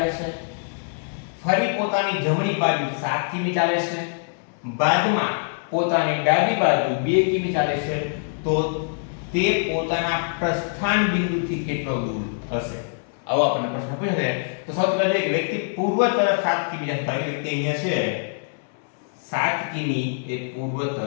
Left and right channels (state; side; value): silent; right; 63 dB below the other